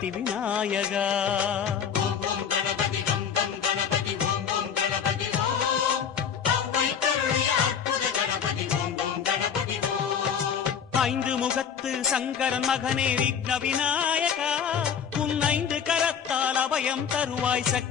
விநாயகா. ஓம் ஓம் கணபதி கம் கம் கணபதி ஓம் ஓம் கணபதி ஓம். அவ்வை கருளிய அற்புத கணபதி ஓம் ஓம் கணபதி ஓம். ஐந்து முகத்து சங்கரன் மகனே விக்ன விநாயகா, உன் ஐந்து கரத்தால் அபயம் தருவாய்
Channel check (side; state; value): right; quieter; 7.6 dB